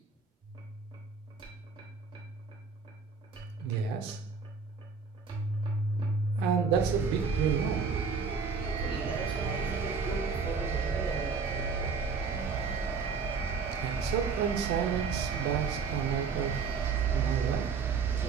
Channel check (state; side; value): quieter; left; 5.3 dB